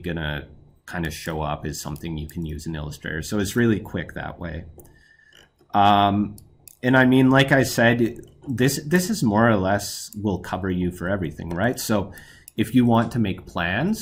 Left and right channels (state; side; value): identical; both; correlation 1.00